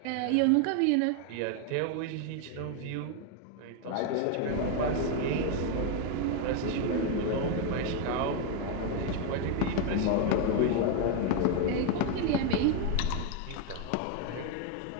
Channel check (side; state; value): both; different; correlation 0.01